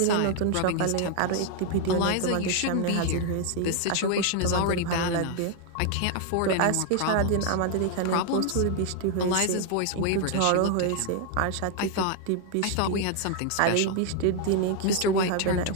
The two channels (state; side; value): different; both; correlation 0.00